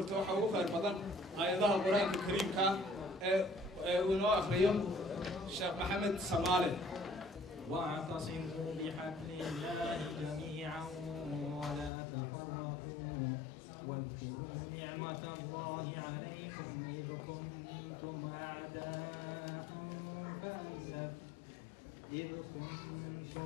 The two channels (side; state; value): right; drops out; at 11.9 s